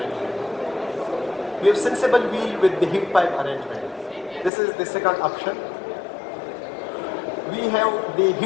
We have sensible wheel with the heat pipe arrangement. This is the second option. We have the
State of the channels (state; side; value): drops out; right; at 4.5 s